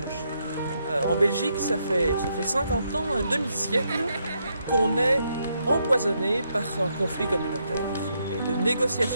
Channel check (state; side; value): inverted; both; correlation -0.78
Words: En Belgique, ça fait 50 ans, un demi-siècle, qu'on est empoisonné par un conflit communautaire. Et de